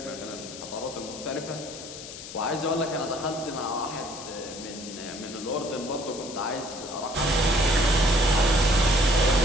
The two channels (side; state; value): left; noise; hiss, 12 dB below the sound